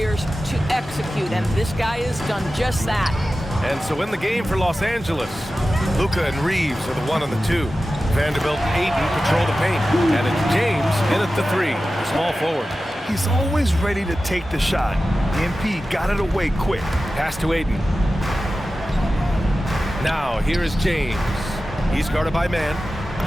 to execute, and this guy has done just that. And so in the game for Los Angeles, Luka and Reeves are the 1 and the 2. Vanderbilt and Ayton patrol the paint. And it's James in at the 3, the small forward. He's always ready to take the shot. MP got it away quick. Pass to Ayton. Now, here is James. He's guarded by man.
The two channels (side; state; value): both; normal; correlation 0.94